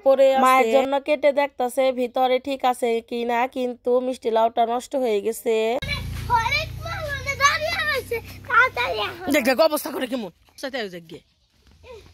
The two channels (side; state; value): both; identical; correlation 1.00